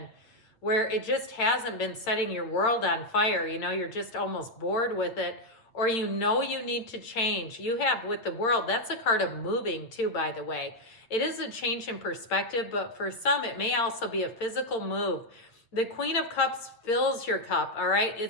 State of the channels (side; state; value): right; late; 8.8 ms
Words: where it just hasn't been setting your world on fire, you're just almost bored with it, or you need to change. You have with the world, that's a card of moving too, by the way. It is a change in perspective, but for some, it may also be a physical move. The Queen of Cups fills your cup, all right?